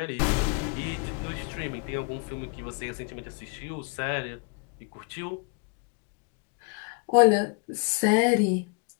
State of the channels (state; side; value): quieter; right; 35.5 dB